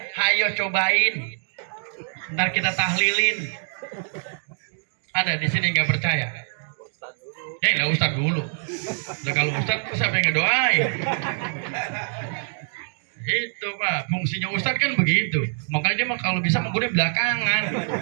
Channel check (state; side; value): silent; left; digital silence